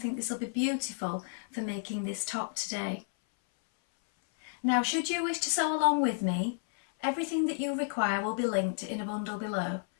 this will be beautiful for making this top today. Now should you wish to sew along with me, everything that you require will be linked in a bundle below,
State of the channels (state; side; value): silent; right; 57 dB below the other